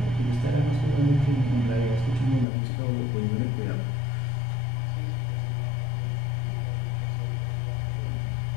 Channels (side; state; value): right; drops out; at 2.5 s